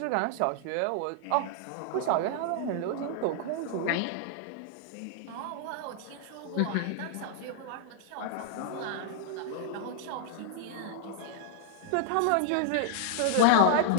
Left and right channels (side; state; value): both; different; correlation -0.01